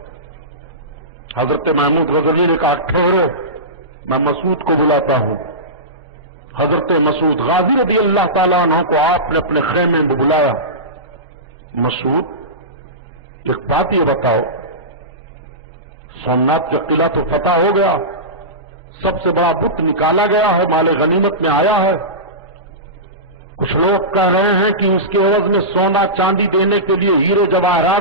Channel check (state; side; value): normal; both; correlation -0.19